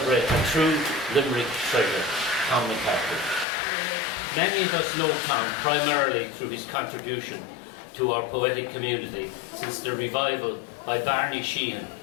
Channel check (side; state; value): right; drops out; at 3.5 s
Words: a true Limerick treasure, Tom McCarthy. Many of us know Tom primarily through his contribution to our poetic community since the revival by Barney Sheehan